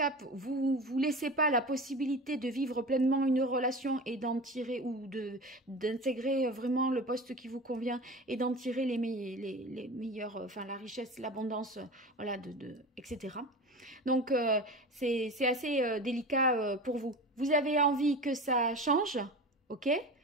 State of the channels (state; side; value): normal; both; correlation 0.31